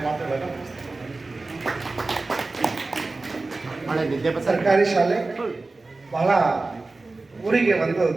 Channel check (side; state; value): left; quieter; 3.4 dB